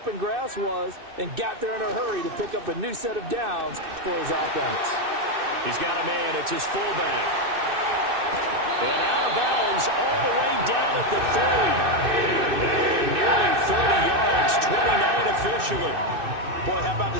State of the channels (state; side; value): late; left; 2.6 ms